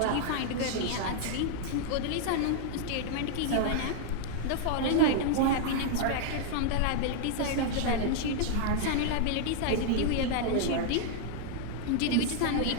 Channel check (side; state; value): both; different; correlation -0.01